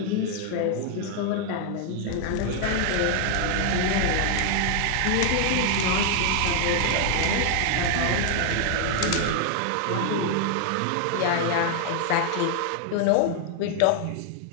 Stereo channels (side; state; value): both; different; correlation 0.00